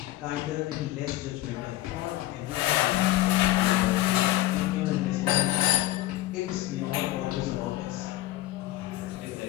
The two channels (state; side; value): quieter; right; 16.1 dB